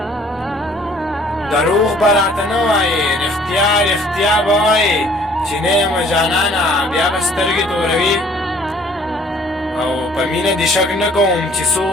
دروغ به راته نه وایې، رښتیا رښتیا به وایې، چې نه یم جانانه بیا به سترګې توروي. او په مینه دې شک نه کوم چې څو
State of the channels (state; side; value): normal; both; correlation 0.56